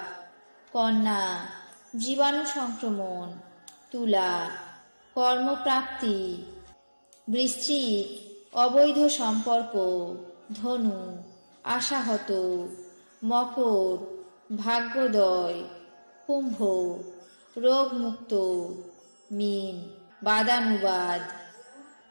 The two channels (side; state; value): both; inverted; correlation -1.00